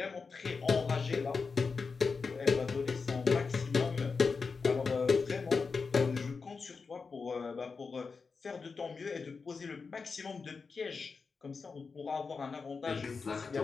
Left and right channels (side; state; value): right; quieter; 4.9 dB